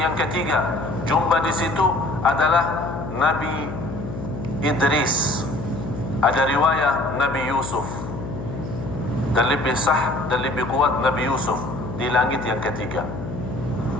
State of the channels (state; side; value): noise; left; hum, 8 dB below the sound